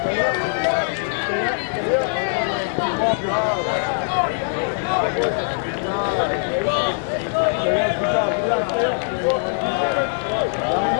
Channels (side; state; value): right; silent; 64 dB below the other